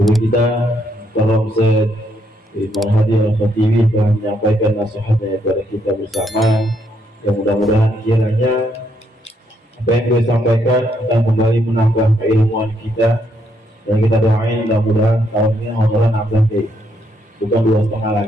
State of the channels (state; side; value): normal; both; correlation 0.74